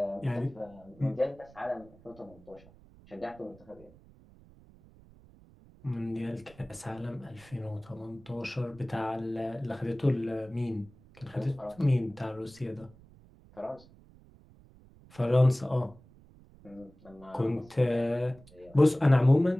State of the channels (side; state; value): right; noise; rumble, 24 dB below the sound